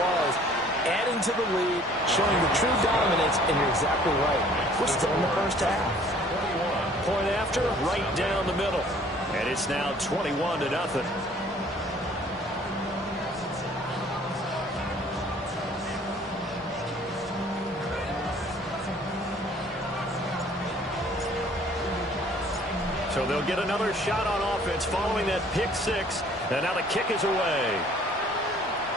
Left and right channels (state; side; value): normal; both; correlation 0.55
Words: Adding to the lead, showing the true dominance, and you're exactly right. We're still in the first half. Point after, right down the middle. And it's now 21-0. So they'll get another shot on offense following that pick 6. And now the kick is away.